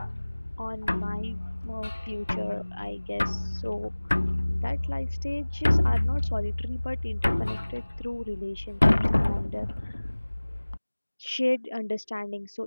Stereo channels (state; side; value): inverted; both; correlation -1.00